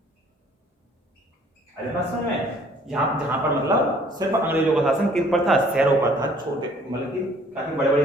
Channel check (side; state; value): both; normal; correlation 0.57